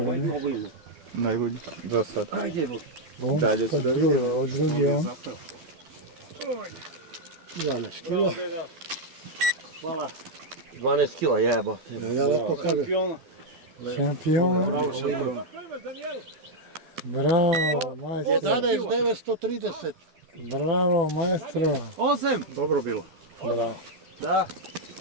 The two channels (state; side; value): late; left; 12 ms